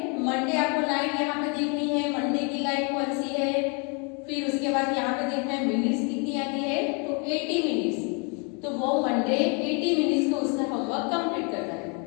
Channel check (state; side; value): quieter; right; 35.0 dB